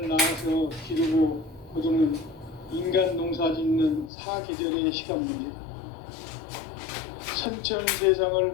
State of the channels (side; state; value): right; drops out; at 4.1 s